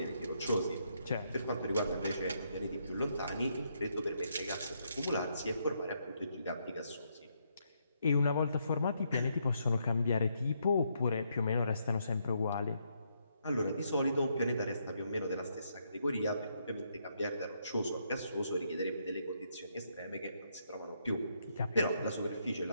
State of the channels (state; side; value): inverted; both; correlation -0.76